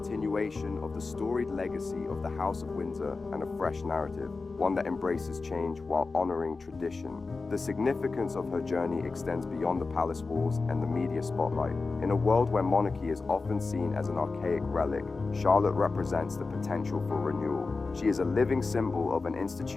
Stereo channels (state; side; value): quieter; right; 4.0 dB